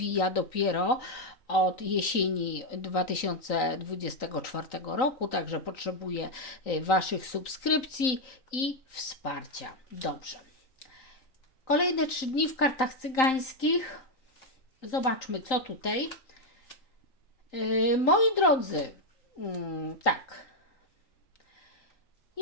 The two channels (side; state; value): right; late; 3.9 ms